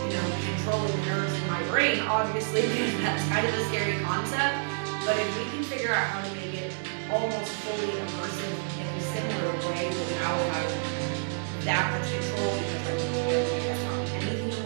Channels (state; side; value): silent; left; digital silence